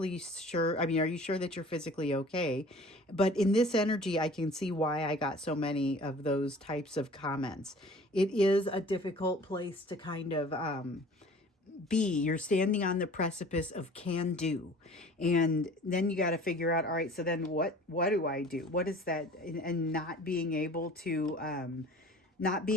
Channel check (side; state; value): both; normal; correlation 0.46